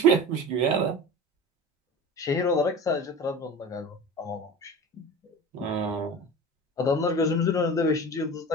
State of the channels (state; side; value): normal; both; correlation 0.34